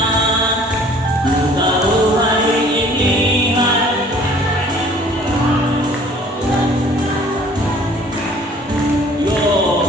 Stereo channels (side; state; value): both; normal; correlation 0.53